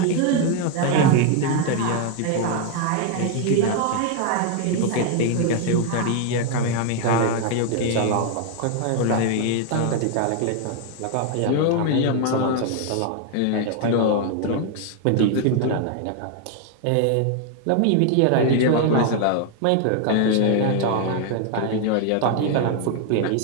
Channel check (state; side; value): different; both; correlation 0.00